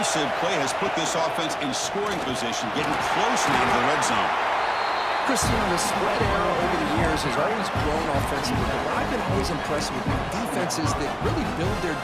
play has put this offense in scoring position, getting close now to the red zone. Christian, the spread era over the years has always grown offensively, but what I've been always impressed with defenses that really build their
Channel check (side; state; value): both; identical; correlation 1.00